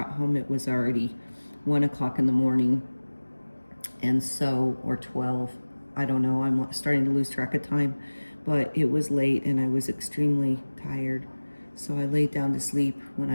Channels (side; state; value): both; inverted; correlation -1.00